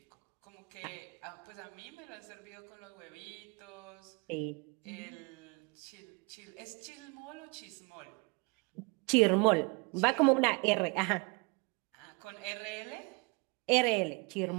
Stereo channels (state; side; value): quieter; left; 30.7 dB